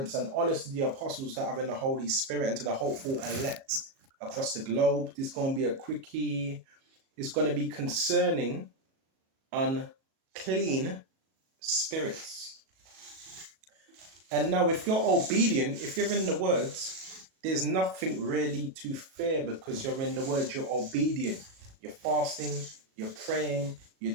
and honors to the apostles that are in the Holy Spirit and to the hopeful elect across the globe. This is going to be a quickie. It's going to be concerning unclean spirits. And now, if you're obedient, if you're in the words, there's nothing really to fear because you're in the words, you're obedient. You're fasting, you're praying,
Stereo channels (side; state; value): left; late; 37 ms